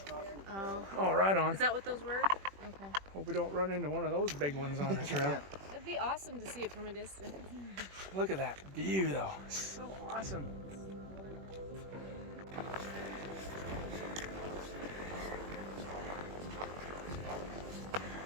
Oh, right on. Is that what those were? Okay. Hope we don't run into one of those big ones on the trail. It'd be awesome to see it from a distance. Look at that view, though. So awesome.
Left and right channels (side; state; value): left; late; 21 ms